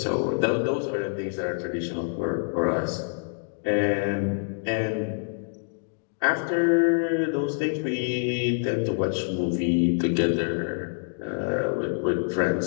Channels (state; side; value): silent; right; digital silence